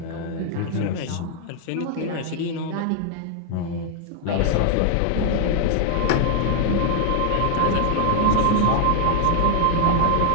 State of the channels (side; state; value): both; different; correlation 0.00